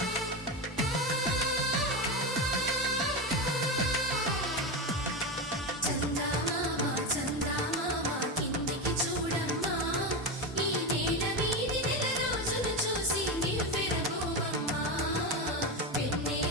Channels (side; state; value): both; normal; correlation 0.16